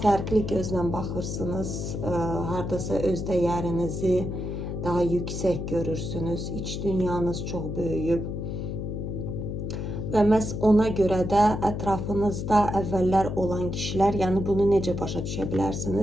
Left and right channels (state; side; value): noise; left; hum, 4 dB below the sound